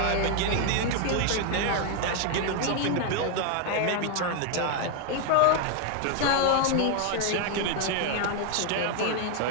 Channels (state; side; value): different; both; correlation 0.00